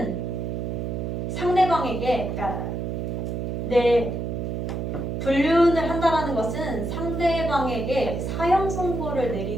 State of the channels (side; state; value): right; noise; hum, 3 dB below the sound